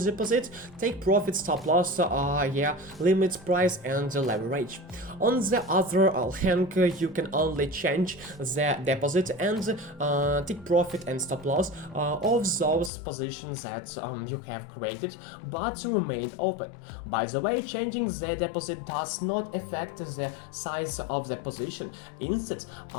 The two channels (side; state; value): right; drops out; at 12.9 s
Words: deposit, take profit, stop loss, limit, price, and leverage. On the other hand, you can only change the deposit and take profit and stop loss of those positions that you have created but remain open. By the way, changing the deposit does not affect the size of the position. Instead,